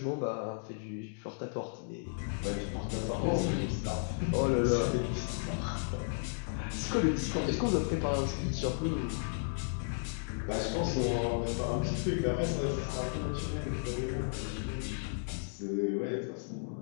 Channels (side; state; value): right; silent; digital silence